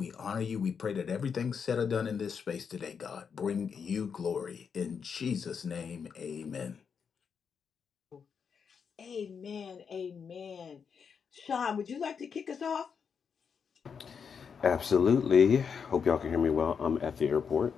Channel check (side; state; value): right; quieter; 6.5 dB